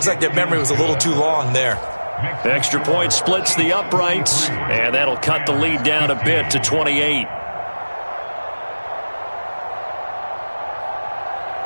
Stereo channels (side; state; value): both; inverted; correlation -1.00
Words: like their memory was a little too long there. The extra point splits the uprights, and that'll cut the lead down a bit to 28.